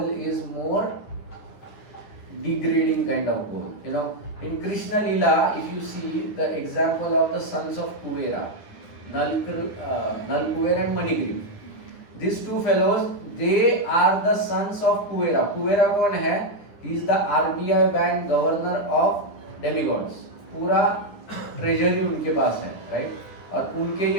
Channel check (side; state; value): right; late; 9.8 ms